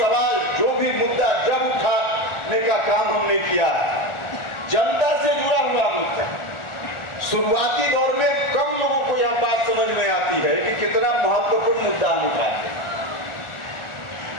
जो भी मुद्दा जब उठाने का काम हमने किया है, जनता से जुड़ा हुआ मुद्दा। शुरुआती दौर में कम लोगों को यह बात समझ में आती है कि कितना महत्वपूर्ण मुद्दा हम उठाते हैं,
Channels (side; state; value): right; late; 1.4 ms